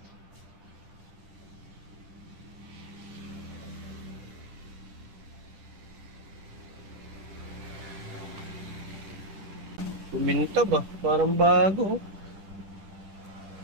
Kuminta ba? Parang bago.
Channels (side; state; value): left; late; 10 ms